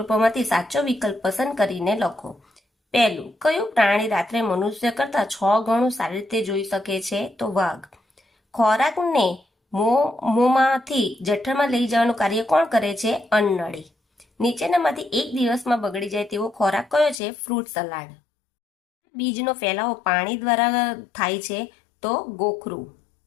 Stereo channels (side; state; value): right; drops out; at 17.2 s